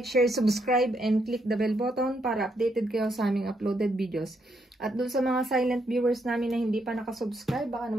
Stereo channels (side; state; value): both; normal; correlation 0.77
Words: share, subscribe, and click the bell button para updated kayo sa aming uploaded videos. At dun sa mga silent viewers namin na hindi pa nakasubscribe, baka